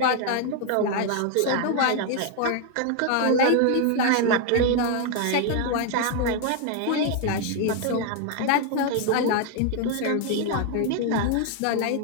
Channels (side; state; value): both; different; correlation 0.00